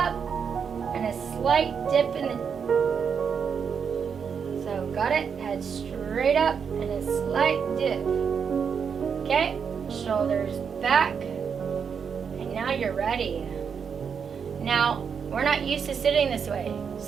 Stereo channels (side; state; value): left; quieter; 6.7 dB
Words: and a slight dip in the... So, got it? Head straight up and a slight dip. Okay? Shoulders back. And now you're ready. Now, we're not used to sitting this way.